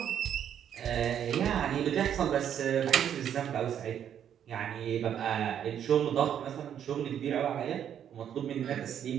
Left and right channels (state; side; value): quieter; left; 9.4 dB